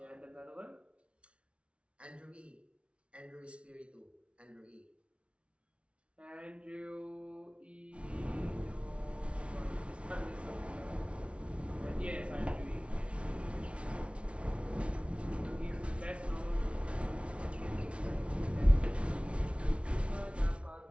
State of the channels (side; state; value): left; late; 0.060 ms